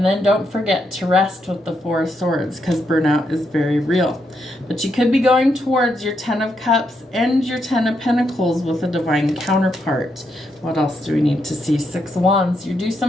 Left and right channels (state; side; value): normal; both; correlation 0.80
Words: then don't forget to rest with the Four of Swords, because burnout is very real. But you could be going towards your Ten of Cups and your Ten of Pentacles with a divine counterpart. What else do we need to see? Six of Wands. You do